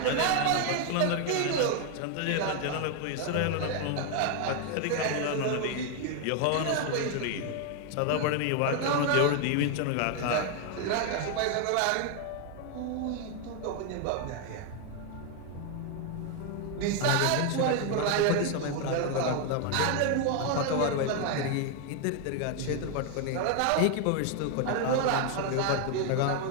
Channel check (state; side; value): different; both; correlation 0.01